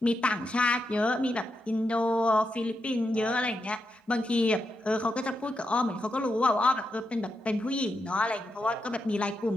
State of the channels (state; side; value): normal; both; correlation 0.85